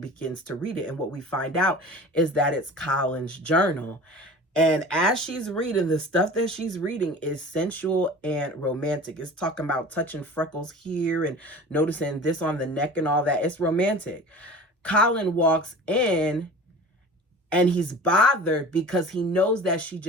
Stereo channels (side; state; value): both; normal; correlation 0.39